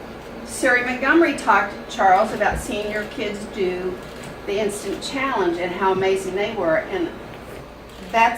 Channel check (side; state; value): both; identical; correlation 1.00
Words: Sari Montgomery talked to Charles about seeing your kids do the instant challenge and how amazing they were. And